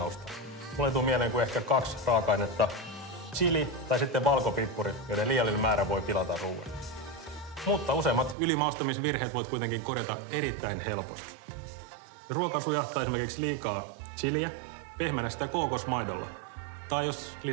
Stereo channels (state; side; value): drops out; left; at 8.3 s